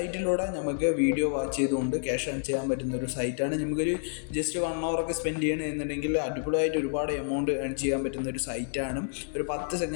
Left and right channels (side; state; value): right; silent; 59 dB below the other